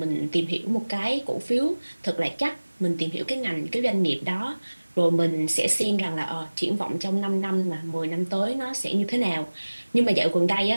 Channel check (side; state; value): both; inverted; correlation -1.00